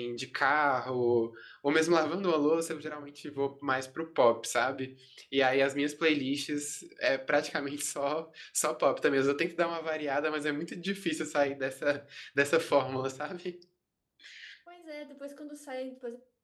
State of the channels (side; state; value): both; identical; correlation 1.00